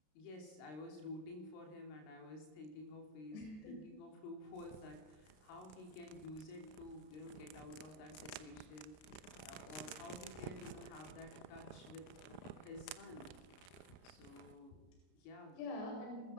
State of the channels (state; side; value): late; right; 33 ms